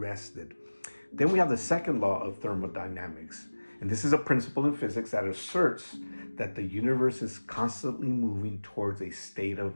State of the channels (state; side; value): inverted; both; correlation -1.00